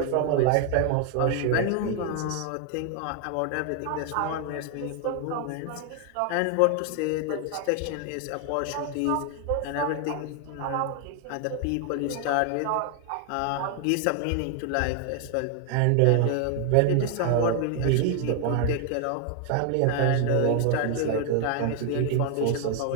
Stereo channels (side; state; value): both; different; correlation 0.00